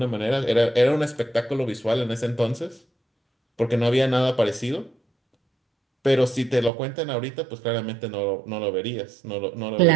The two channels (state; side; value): drops out; left; at 6.7 s